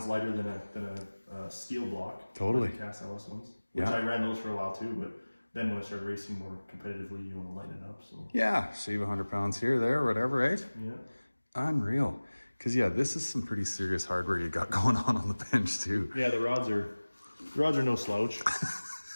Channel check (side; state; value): both; inverted; correlation -1.00